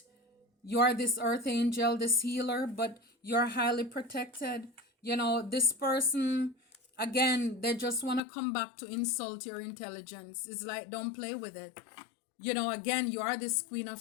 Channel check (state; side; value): drops out; right; at 8.2 s